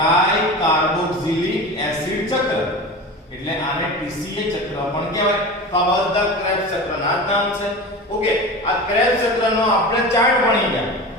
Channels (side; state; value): both; normal; correlation 0.30